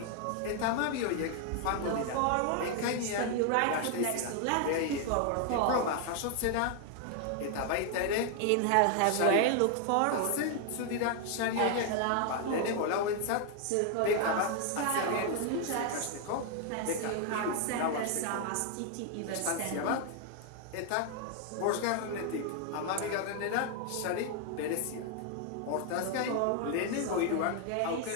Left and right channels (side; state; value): both; different; correlation 0.00